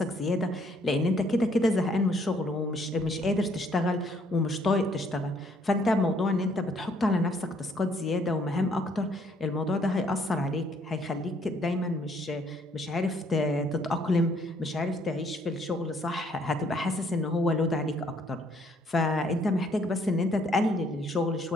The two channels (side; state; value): both; normal; correlation 0.65